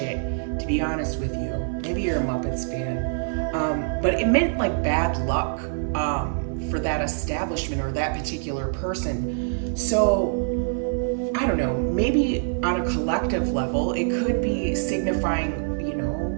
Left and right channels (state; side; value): silent; left; 55 dB below the other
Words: to be honest with you. Maybe you're a Muppets fan. But it meant like bad luck for that establishment or that particular person. So, I don't know, maybe on a collective level, it could be signifying,